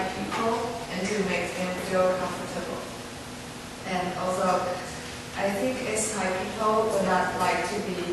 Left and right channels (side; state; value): both; identical; correlation 1.00